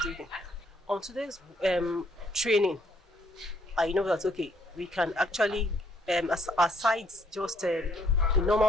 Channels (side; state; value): both; normal; correlation 0.68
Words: On today's training, I know that we can actually, aside just the